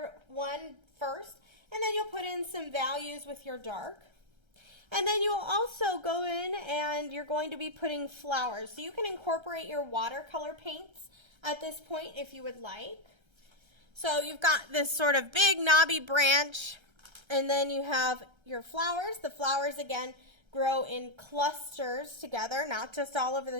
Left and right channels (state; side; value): late; left; 1.3 ms